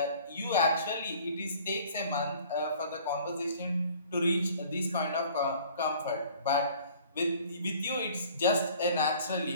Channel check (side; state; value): both; inverted; correlation -0.51